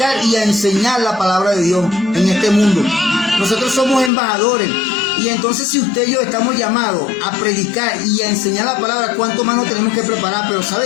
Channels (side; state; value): right; drops out; at 4.1 s